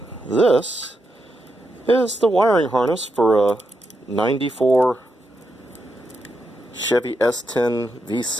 This is the wiring harness for a 94 Chevy S10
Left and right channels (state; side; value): normal; both; correlation 0.84